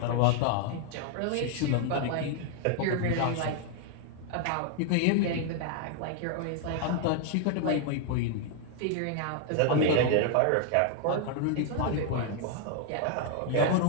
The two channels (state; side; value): different; both; correlation 0.00